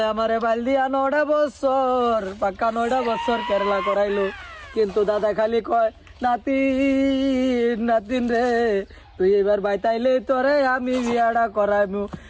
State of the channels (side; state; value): both; identical; correlation 1.00